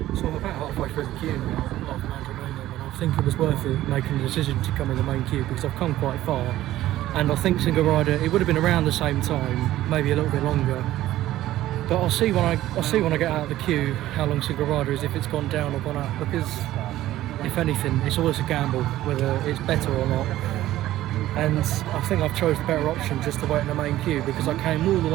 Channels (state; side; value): quieter; left; 14.5 dB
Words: I think it was worth it making the decision to come in the main queue because I've come quite far, and I think single rider it would have been around the same time, maybe a little bit longer. But I'll see when I get out of the queue how long single rider is, if it's gone down or gone up, because if anything it's always a gamble whether it's better or not. And I think I've chose the better option just to wait in the main queue because I came all the